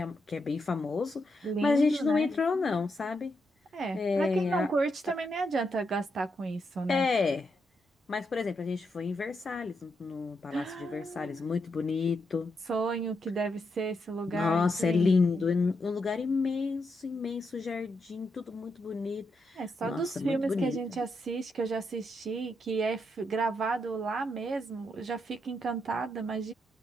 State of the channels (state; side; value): normal; both; correlation 0.82